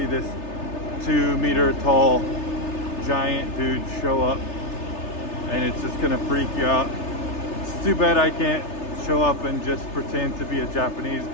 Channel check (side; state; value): right; late; 3.3 ms